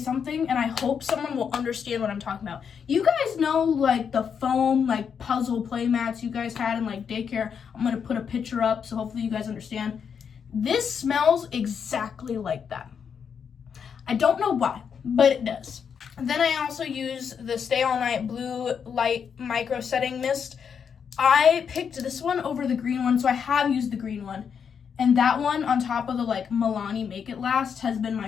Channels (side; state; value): right; quieter; 7.0 dB